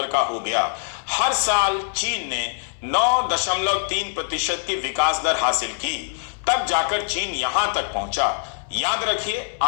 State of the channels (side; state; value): right; silent; digital silence